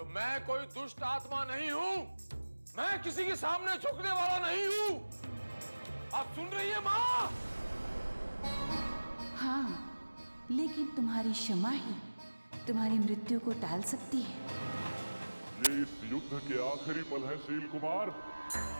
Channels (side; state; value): both; inverted; correlation -1.00